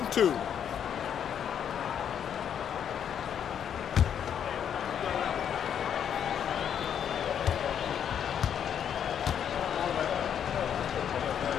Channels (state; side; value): quieter; right; 8.7 dB